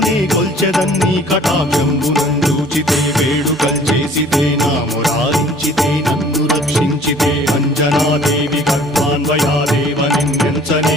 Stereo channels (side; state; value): both; normal; correlation 0.52